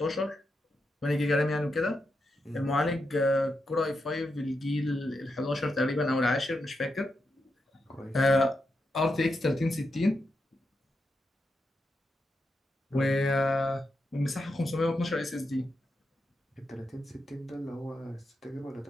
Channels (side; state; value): both; normal; correlation 0.85